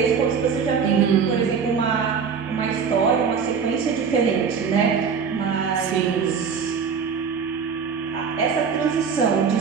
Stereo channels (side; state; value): left; quieter; 6.2 dB